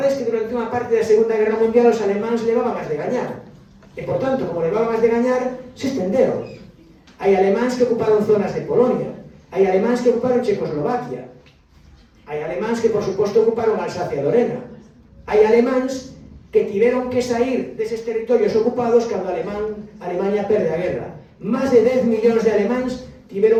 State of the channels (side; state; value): both; identical; correlation 1.00